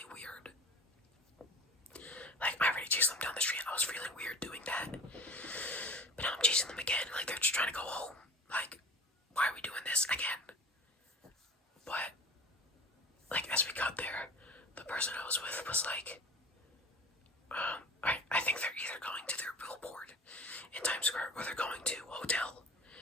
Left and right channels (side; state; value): both; normal; correlation 0.41